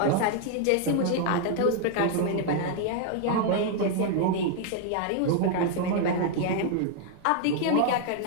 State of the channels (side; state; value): both; different; correlation 0.00